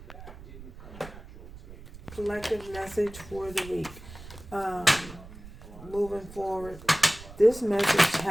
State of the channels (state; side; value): noise; right; rumble, 16 dB below the sound